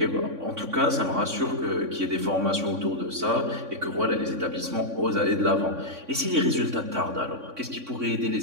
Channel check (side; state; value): left; late; 3.6 ms